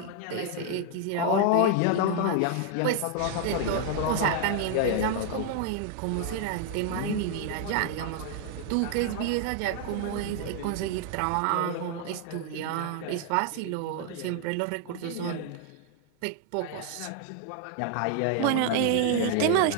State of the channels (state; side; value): different; both; correlation 0.00